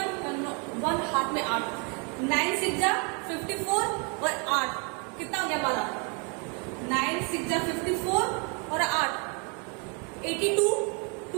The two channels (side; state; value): left; quieter; 35.7 dB